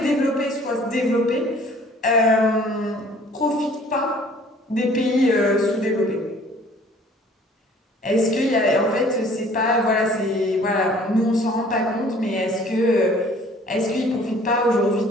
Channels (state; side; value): normal; both; correlation 0.54